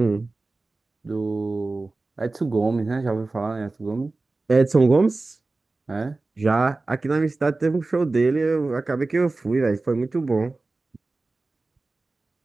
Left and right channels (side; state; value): left; quieter; 3.4 dB